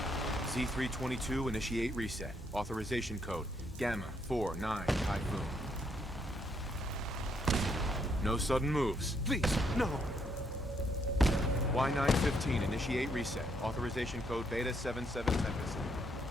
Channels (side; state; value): both; normal; correlation 0.73